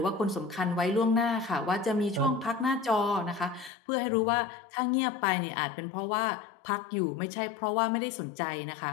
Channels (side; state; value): right; drops out; at 3.7 s